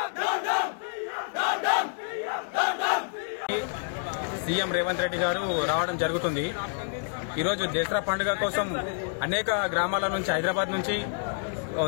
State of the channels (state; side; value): silent; right; digital silence